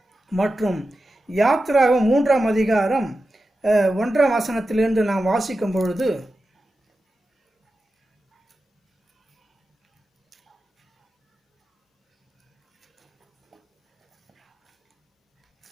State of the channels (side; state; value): both; normal; correlation 0.92